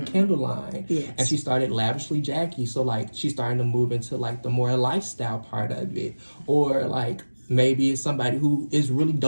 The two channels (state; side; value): inverted; both; correlation -1.00